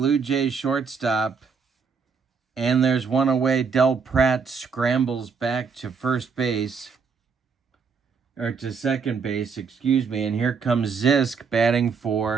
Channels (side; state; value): left; quieter; 5.6 dB